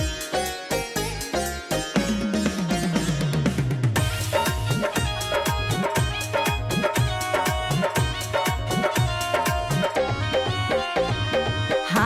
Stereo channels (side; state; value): both; identical; correlation 1.00